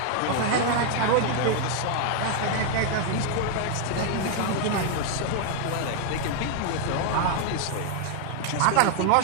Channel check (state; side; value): different; both; correlation 0.00